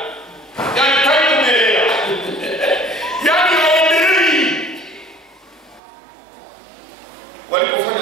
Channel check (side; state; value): left; drops out; at 5.8 s